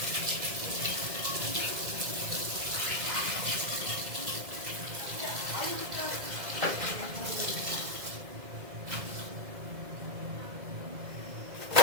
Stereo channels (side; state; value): left; late; 2.0 ms